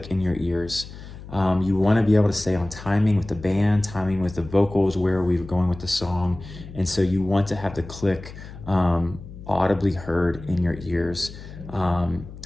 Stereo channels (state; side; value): noise; left; hum, 14 dB below the sound